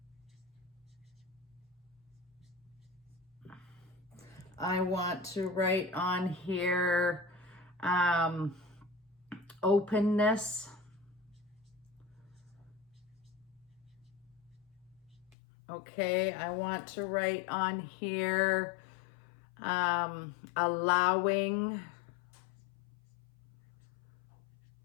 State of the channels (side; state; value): right; drops out; at 15.4 s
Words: I want to write on here openness, okay. I want to write on here allowing,